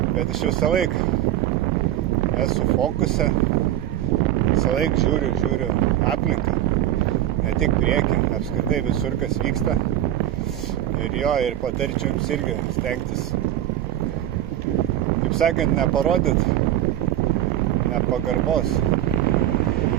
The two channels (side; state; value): left; quieter; 12.6 dB